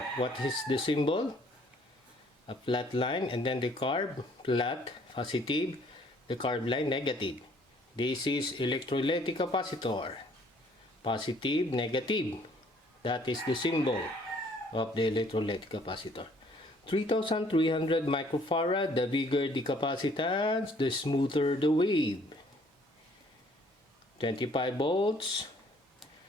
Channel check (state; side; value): normal; both; correlation 0.60